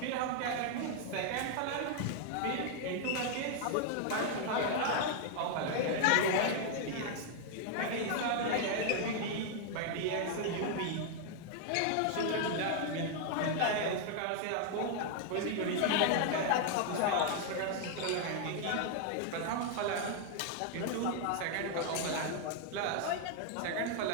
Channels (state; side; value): different; both; correlation 0.00